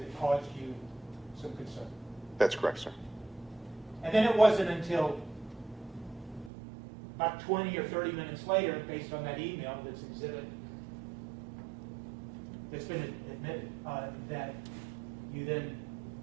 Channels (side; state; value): left; drops out; at 6.5 s